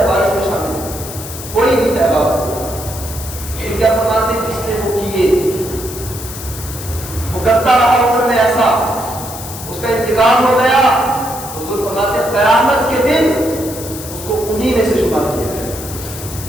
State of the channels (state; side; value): noise; left; hiss, 11 dB below the sound